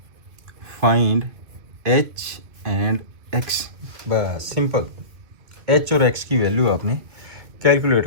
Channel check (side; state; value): left; late; 2.3 ms